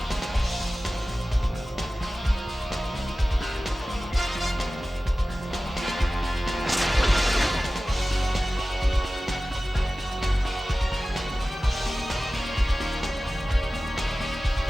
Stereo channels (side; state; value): both; normal; correlation 0.96